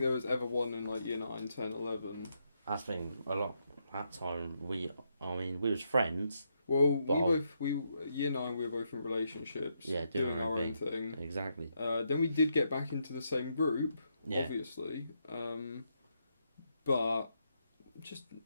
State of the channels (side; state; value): both; inverted; correlation -0.80